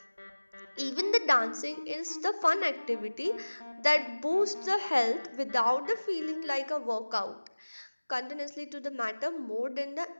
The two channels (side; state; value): both; inverted; correlation -1.00